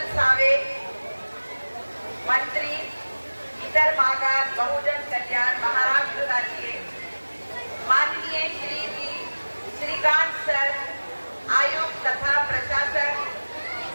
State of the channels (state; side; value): inverted; both; correlation -1.00